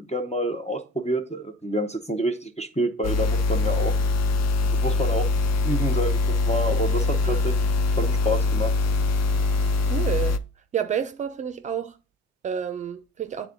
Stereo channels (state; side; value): normal; both; correlation 0.43